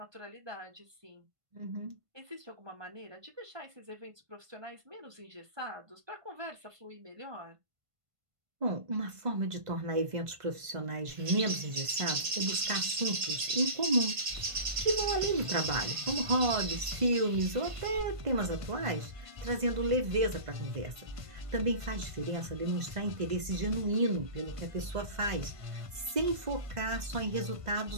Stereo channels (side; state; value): left; late; 1.5 ms